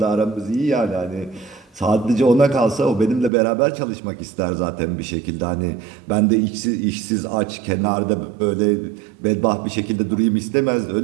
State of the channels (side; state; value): left; drops out; at 3.3 s